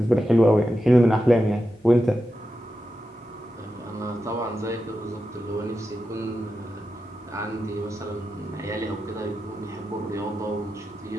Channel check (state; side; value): normal; both; correlation 0.90